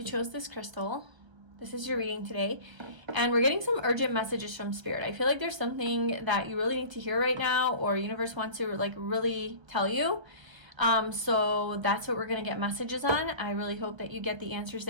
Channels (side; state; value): left; late; 1.3 ms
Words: chose this crystal, this is your reading today. And we're getting some urgent messages from Spirit. I feel like there's something that you really need to hear right now, or universe wants to like really tell you. So that's what we're gonna get messages on. I really hope that you get the answers